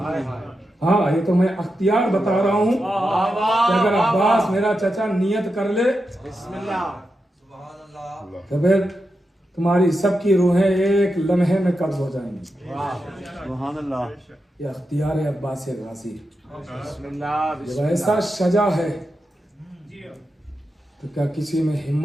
हाँ, ये तो मैं अख्तियार बता रहा हूँ कि अगर अब्बास मेरा चचा नियत कर ले तो फिर तुम्हारी सबकी रूहें एक लम्हे में कब्ज हो जाएंगी। ये अख्तियार है अब्बास गाजी। जब ऐसा सजा है तो क्या किसी में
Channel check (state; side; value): normal; both; correlation 0.88